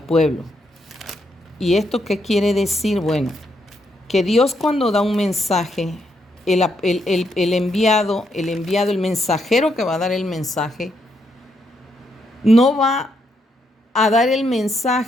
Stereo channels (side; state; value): both; normal; correlation 0.77